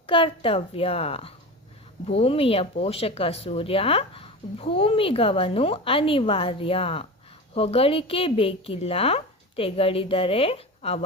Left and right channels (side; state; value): both; normal; correlation 0.28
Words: ಕರ್ತವ್ಯ. ಭೂಮಿಯ ಪೋಷಕ ಸೂರ್ಯ, ಭೂಮಿಗವನು ಅನಿವಾರ್ಯ. ಹೊಗಳಿಕೆ ಬೇಕಿಲ್ಲ, ತೆಗಳಿದರೆ ಅವ